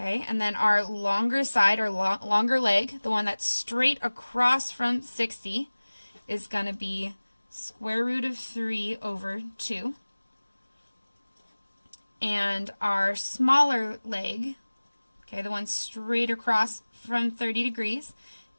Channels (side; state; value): both; inverted; correlation -1.00